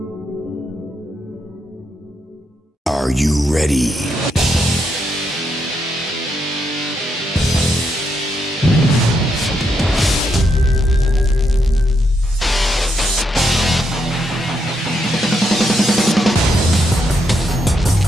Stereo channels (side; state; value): both; normal; correlation 0.79